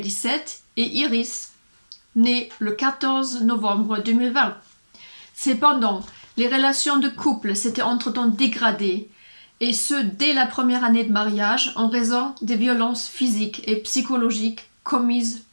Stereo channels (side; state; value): both; inverted; correlation -1.00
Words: et Iris, née le 14 novembre 2020. Cependant, les relations de couple s'étaient entre-temps dégradées, et ce dès la première année de mariage en raison des violences physiques et psychologiques commises